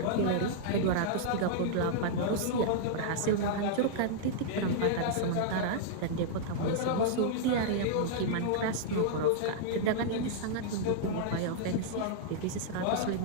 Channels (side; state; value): both; different; correlation -0.01